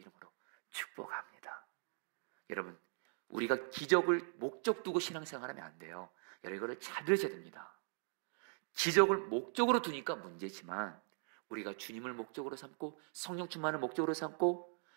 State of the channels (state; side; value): silent; left; 51 dB below the other